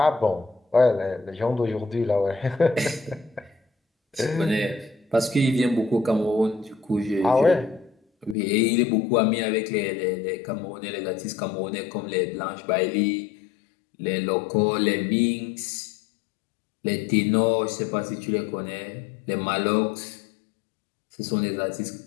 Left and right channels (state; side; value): drops out; right; at 8.3 s